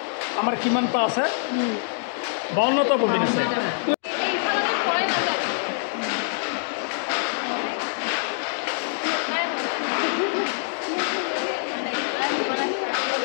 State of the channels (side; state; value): right; silent; digital silence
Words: আমাৰ কিমানটা আছে, 52টা ববিন আছে।